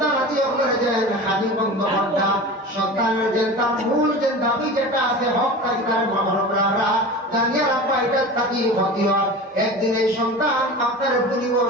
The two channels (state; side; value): normal; both; correlation 0.33